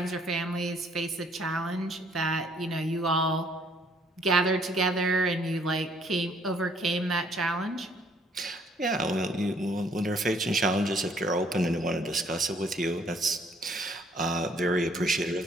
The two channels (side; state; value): both; normal; correlation 0.63